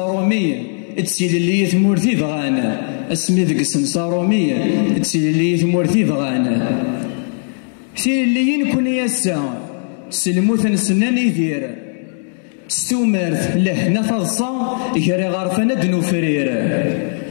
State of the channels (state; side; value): silent; right; digital silence